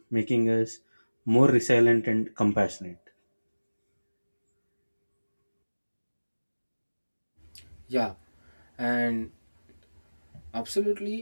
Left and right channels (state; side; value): inverted; both; correlation -1.00